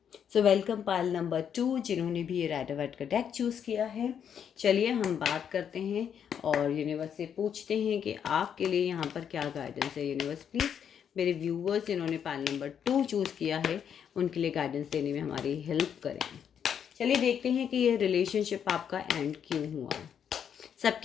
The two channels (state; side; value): quieter; right; 8.3 dB